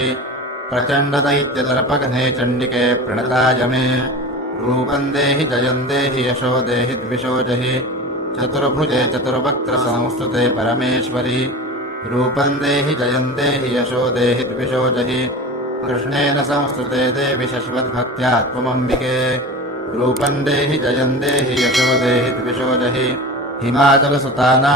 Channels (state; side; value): normal; both; correlation 0.32